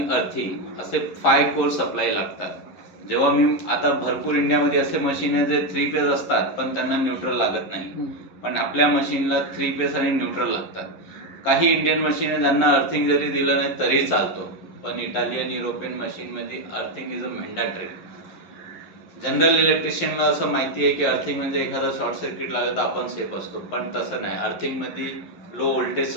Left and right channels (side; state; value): right; late; 11 ms